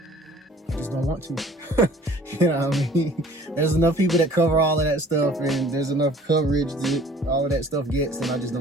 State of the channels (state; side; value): normal; both; correlation 0.51